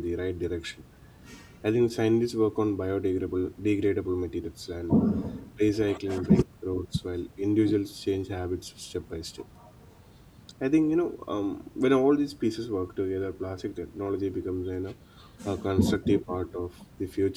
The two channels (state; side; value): identical; both; correlation 1.00